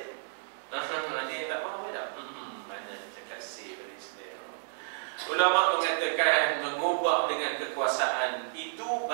Ada yang tak mahu tak? Banyak cakap say pada Islam. Ulama mengatakan mengubah dengan kekuasaan itu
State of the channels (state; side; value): silent; left; digital silence